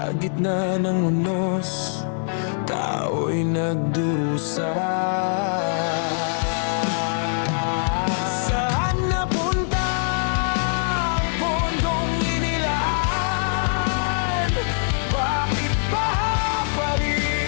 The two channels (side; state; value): right; silent; digital silence